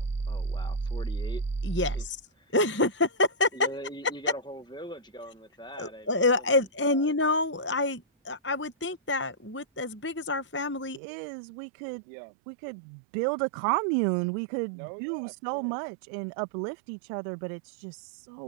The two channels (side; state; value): left; drops out; at 11.0 s